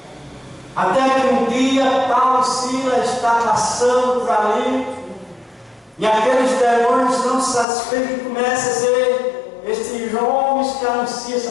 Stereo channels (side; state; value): right; drops out; at 7.7 s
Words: Até que um dia Paulo e Silas está passando por ali, e aqueles demônios não satisfeitos começam a dizer: estes homens que anunciam essa